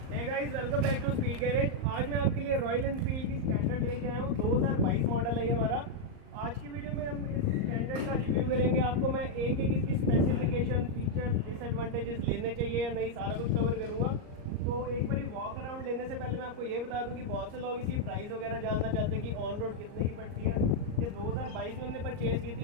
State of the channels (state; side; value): late; left; 38 ms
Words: Hey guys, welcome back to Speed Garage. आज मैं आपके लिए रॉयल एनफील्ड की स्टैंडर्ड लेके आया हूँ। 2022 मॉडल है ये हमारा। आज की वीडियो में हम इस स्टैंडर्ड का रिव्यू करेंगे। आपको मैं एक एक इसकी स्पेसिफिकेशन, फीचर्स, डिसएडवांटेजेस लेने चाहिए या नहीं, सारा कुछ कवर करूँगा। तो एक बारी वॉक अराउंड लेने से पहले मैं आपको ये बता दूँ कि बहुत से लोग इसकी प्राइस वगैरह जानना चाहते हैं कि ऑन रोड कितने की पड़ती है। ये 2022 में हमने परचेज़ की